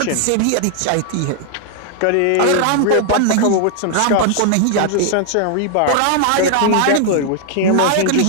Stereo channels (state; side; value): different; both; correlation 0.00